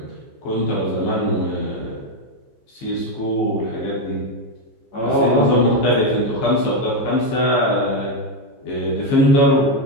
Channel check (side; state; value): right; late; 15 ms